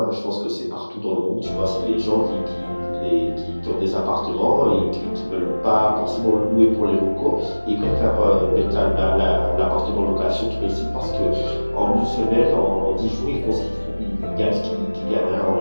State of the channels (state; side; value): inverted; both; correlation -1.00